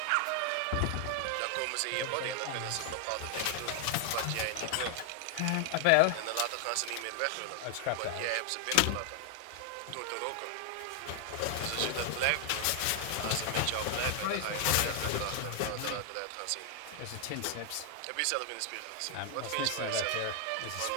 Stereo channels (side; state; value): both; different; correlation 0.00